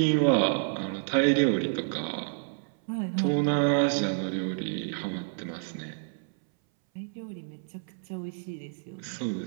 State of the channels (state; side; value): silent; left; 58 dB below the other